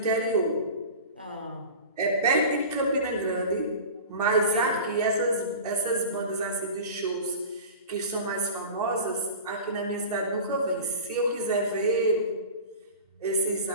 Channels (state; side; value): inverted; both; correlation -0.34